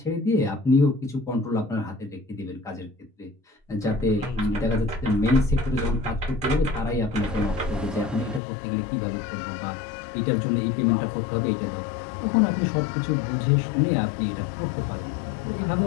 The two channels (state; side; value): drops out; right; at 8.4 s